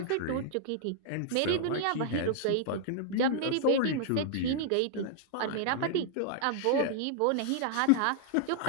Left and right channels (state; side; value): different; both; correlation -0.01